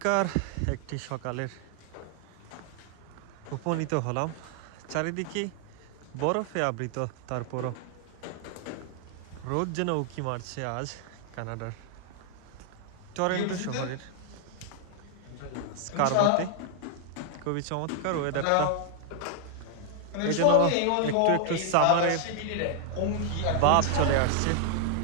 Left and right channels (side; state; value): both; different; correlation 0.00